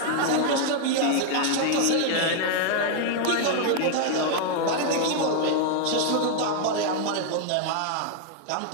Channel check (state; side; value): different; both; correlation 0.00